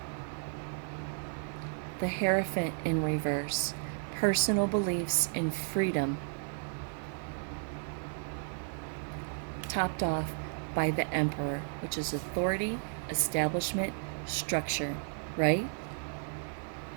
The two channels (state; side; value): silent; left; 55 dB below the other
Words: The Hierophant in reverse, personal beliefs and freedom. Topped off by the Emperor, which is authority, establishment, structure, right?